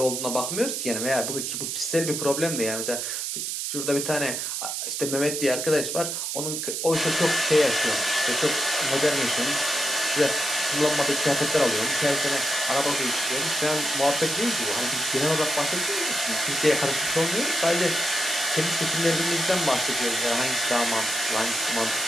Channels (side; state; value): right; noise; hiss, 3 dB below the sound